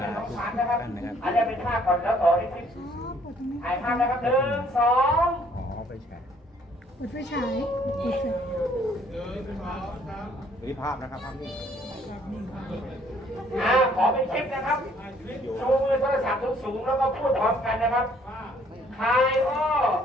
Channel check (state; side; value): normal; both; correlation 0.62